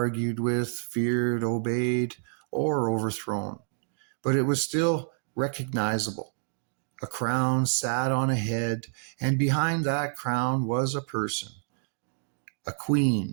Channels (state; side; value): silent; left; digital silence